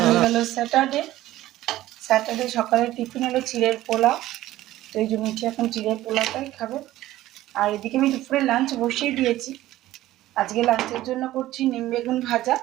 হয়ে গেল স্যাটারডে। স্যাটারডে সকালে টিফিন হলো চিড়ের পোলাও, তো এই যে মিঠি এখন চিড়ের পোলাওটাই খাবে। আর এদিকে আমি দুপুরে লাঞ্চ বসিয়ে দিয়েছি। আজকে লাঞ্চের জন্য করছি নিম বেগুন ভাজা।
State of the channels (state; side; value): quieter; left; 15.2 dB